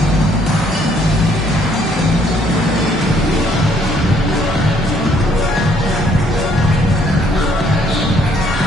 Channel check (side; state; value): both; normal; correlation 0.65